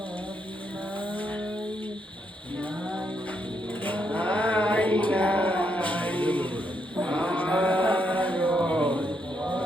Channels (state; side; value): normal; both; correlation 0.78